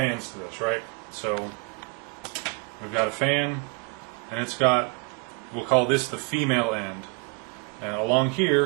to this, right? So we've got a fan, and it's got, we'll call this the female end, and along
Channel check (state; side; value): quieter; left; 32.1 dB